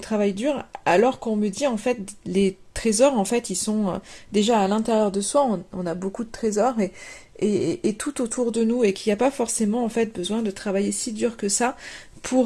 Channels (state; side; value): identical; both; correlation 1.00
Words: alors qu'on me dit, en fait, les trésors, en fait, ils sont déjà à l'intérieur de soi, on a beaucoup de trésors et tout autour de nous, et qu'il n'y a pas forcément, en fait, besoin de travailler si dur que ça